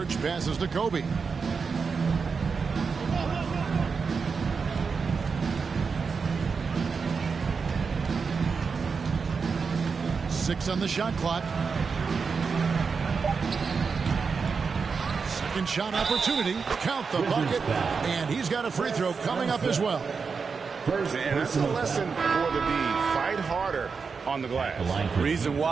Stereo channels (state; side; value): quieter; left; 5.3 dB